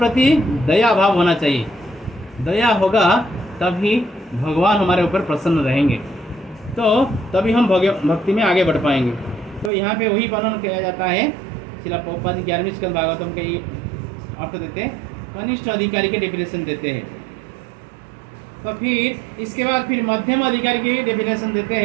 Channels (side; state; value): left; drops out; at 9.7 s